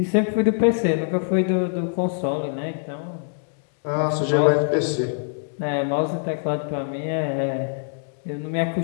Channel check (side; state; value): right; silent; digital silence